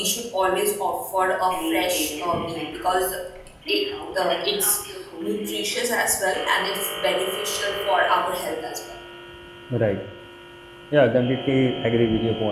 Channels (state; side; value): identical; both; correlation 1.00